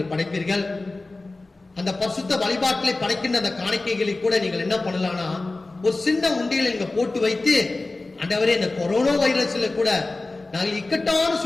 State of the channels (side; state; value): right; quieter; 3.2 dB